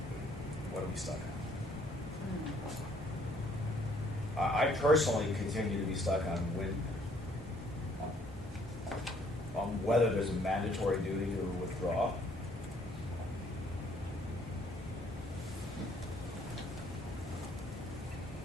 are we stuck at? I personally continue to be stuck on whether there's a mandatory duty to withdraw.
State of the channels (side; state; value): both; normal; correlation 0.63